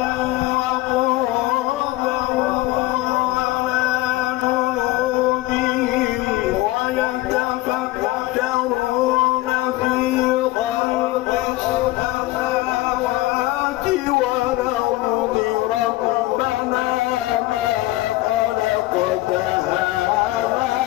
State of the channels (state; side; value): quieter; right; 18.2 dB